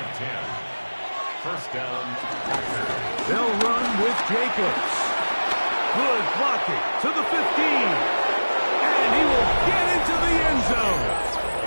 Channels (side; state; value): both; inverted; correlation -1.00